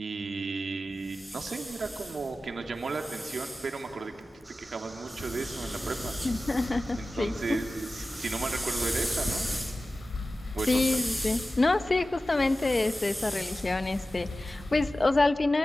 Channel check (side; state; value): both; normal; correlation 0.95